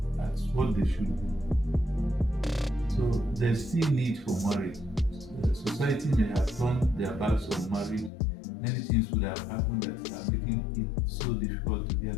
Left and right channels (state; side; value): drops out; right; at 8.1 s